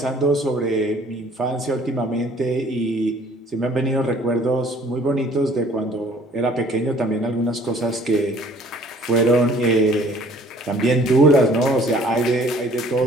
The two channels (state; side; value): normal; both; correlation 0.56